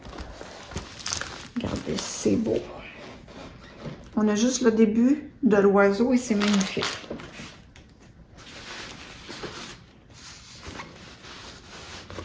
Regardez, c'est beau. On a juste le début de l'oiseau et c'est magnifique.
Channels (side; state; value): both; identical; correlation 1.00